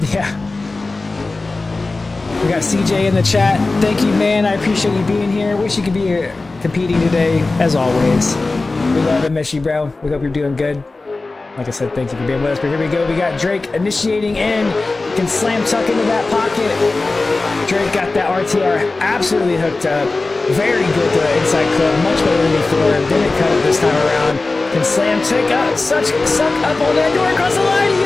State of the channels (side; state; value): right; quieter; 3.4 dB